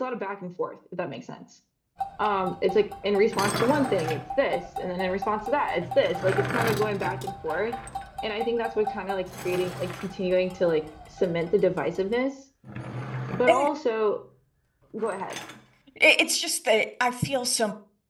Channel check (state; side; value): identical; both; correlation 1.00